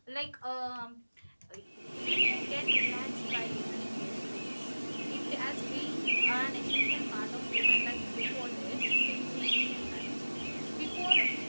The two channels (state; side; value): inverted; both; correlation -1.00